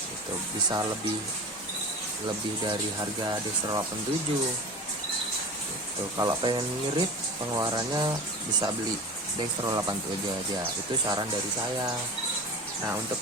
itu bisa lebih dari harga Dextro 87 gitu. gitu. Kalau pengen ngirit pengeluarannya bisa beli Dextro 87 aja, itu saran dari saya. Nah untuk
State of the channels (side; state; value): both; normal; correlation 0.32